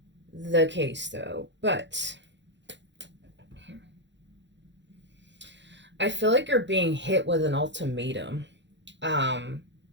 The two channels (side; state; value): left; late; 0.52 ms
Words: the case though, but I feel like you're being hit with an ultimatum. Um,